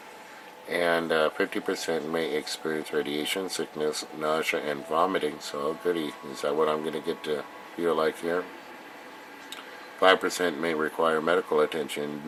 And 50% may experience radiation sickness, nausea, and vomiting. So, goody, is that what I'm going to get to feel like here? 5% may require medical attention.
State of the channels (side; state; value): both; identical; correlation 1.00